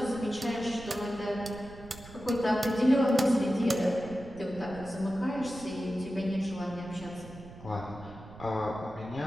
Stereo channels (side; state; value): right; noise; rumble, 17 dB below the sound